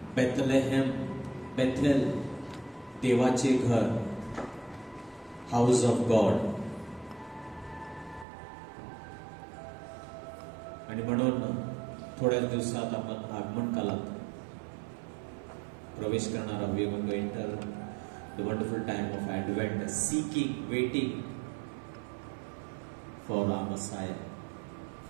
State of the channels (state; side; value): drops out; left; at 8.2 s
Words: बेथलेहेम, बेथेल, देवाचे घर, हाऊस ऑफ गॉड. आणि म्हणून थोड्याच दिवसात आपण आगमन कालात प्रवेश करणार आहोत. We are going to enter the wonderful time of Advent, seeking, waiting for our Messiah,